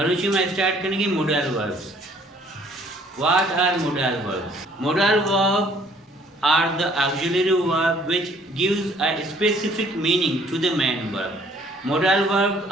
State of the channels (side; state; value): both; normal; correlation 0.59